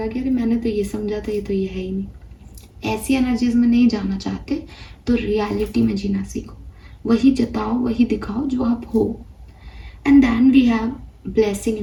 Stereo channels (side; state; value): both; identical; correlation 1.00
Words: कि अरे मैंने तो ये समझा था, ये तो ये है ही नहीं। ऐसी एनर्जीज में नहीं जाना चाहते तो रियलिटी में जीना सीखो, वही जताओ, वही दिखाओ जो आप हो। And then we have blessing